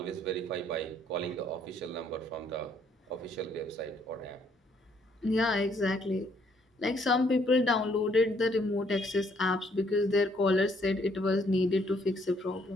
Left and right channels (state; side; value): normal; both; correlation 0.67